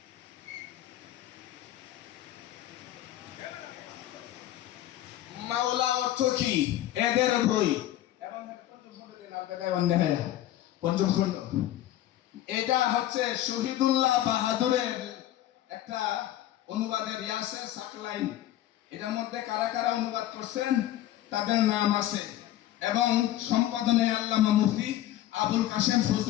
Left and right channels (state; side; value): quieter; right; 13.5 dB